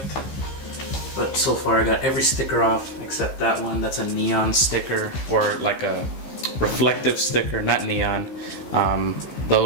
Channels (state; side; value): late; right; 15 ms